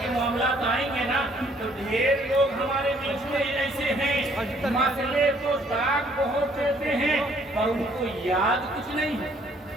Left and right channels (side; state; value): both; normal; correlation 0.63